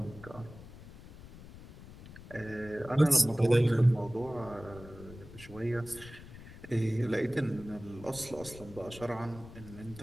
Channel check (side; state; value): left; noise; rumble, 17 dB below the sound